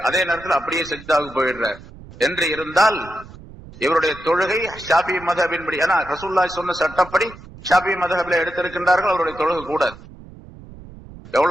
அதே நேரத்தில் அப்படியே சஜ்தாவுக்கு போயிடுறார் என்று இருந்தால் இவருடைய தொழுகை ஷாஃபி மذஹபின்படி, ஏன்னா ரசூலுல்லாஹி சொன்ன சட்டப்படி ஷாஃபி மذஹபில் எடுத்திருக்கின்றார்கள், அவருடைய தொழுகை கூடாது.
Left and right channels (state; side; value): noise; right; rumble, 18 dB below the sound